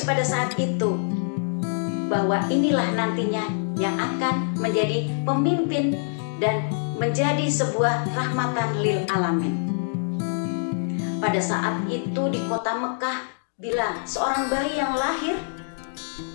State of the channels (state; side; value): silent; right; digital silence